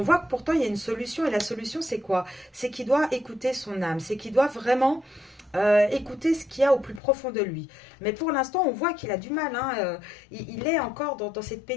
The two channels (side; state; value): right; drops out; at 7.0 s